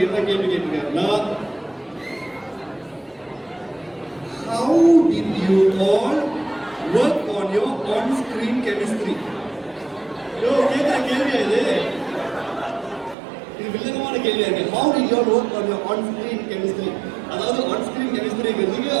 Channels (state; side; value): drops out; left; at 13.2 s